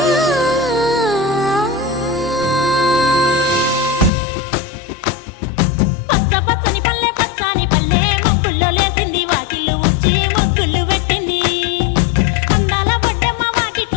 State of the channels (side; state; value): right; drops out; at 4.1 s